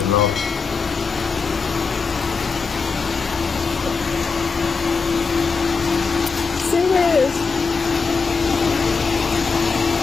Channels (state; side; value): quieter; right; 4.9 dB